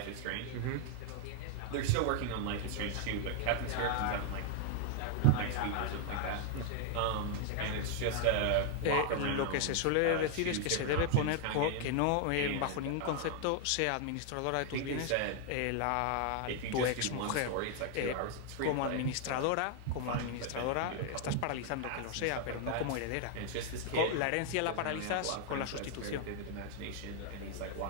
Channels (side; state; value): both; different; correlation 0.00